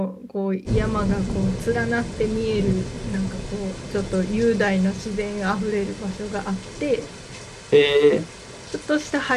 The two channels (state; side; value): identical; both; correlation 1.00